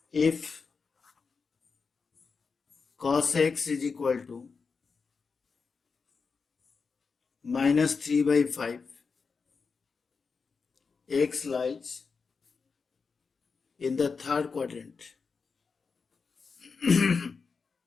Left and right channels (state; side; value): quieter; right; 5.0 dB